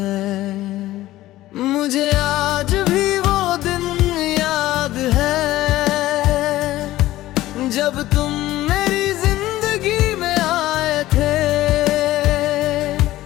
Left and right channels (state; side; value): quieter; right; 15.8 dB